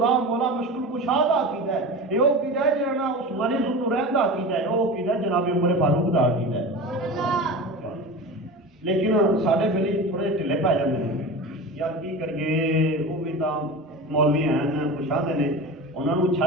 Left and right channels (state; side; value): normal; both; correlation 0.30